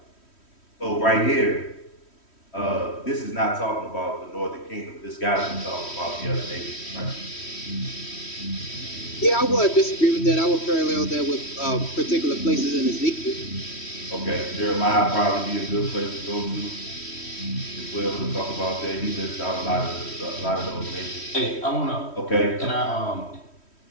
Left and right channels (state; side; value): late; right; 3.1 ms